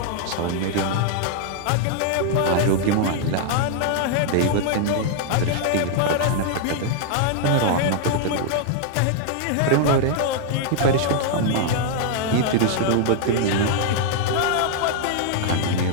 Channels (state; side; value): different; both; correlation 0.00